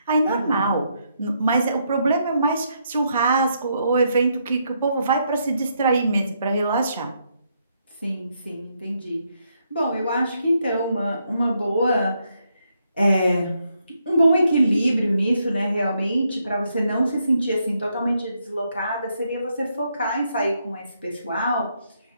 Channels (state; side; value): inverted; both; correlation -0.77